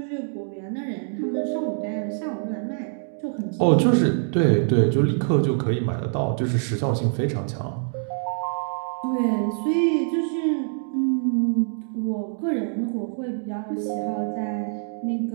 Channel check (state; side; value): silent; left; digital silence